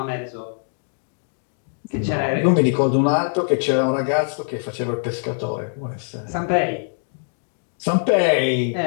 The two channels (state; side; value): silent; right; digital silence